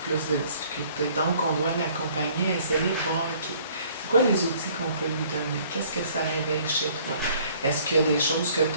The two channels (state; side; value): inverted; both; correlation -0.57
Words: plus de difficultés. Donc, on doit l'accompagner à essayer de voir, OK, c'est quoi les outils qu'on peut lui donner? Qu'est-ce que ça réveille chez toi? Est-ce qu'il y a des choses que